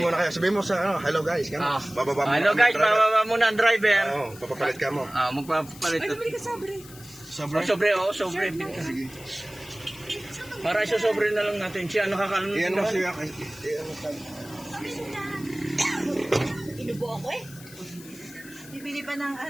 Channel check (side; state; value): left; noise; hiss, 19 dB below the sound